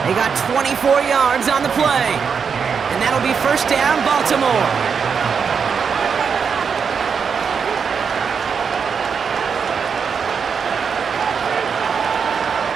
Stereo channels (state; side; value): quieter; left; 6.2 dB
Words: They got 24 yards on the play. And that'll be 1st down, Baltimore.